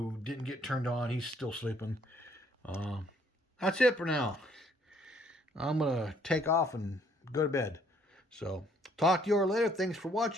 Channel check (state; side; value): normal; both; correlation 0.65